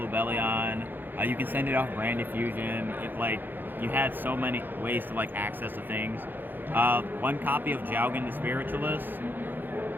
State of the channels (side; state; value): left; late; 0.092 ms